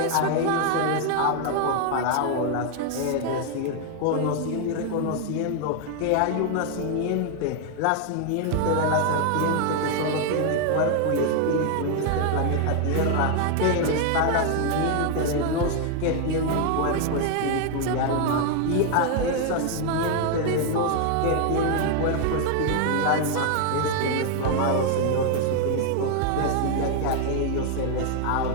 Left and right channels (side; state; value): both; different; correlation 0.00